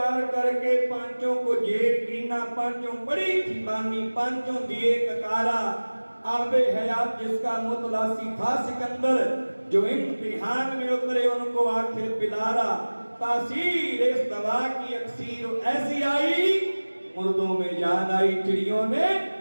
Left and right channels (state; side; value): inverted; both; correlation -1.00